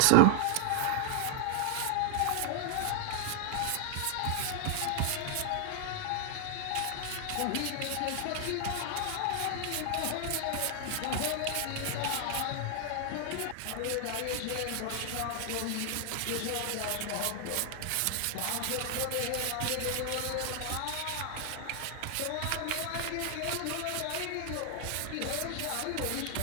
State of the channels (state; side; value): different; both; correlation 0.00